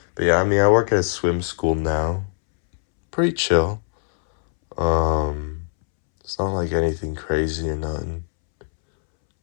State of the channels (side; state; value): right; silent; 65 dB below the other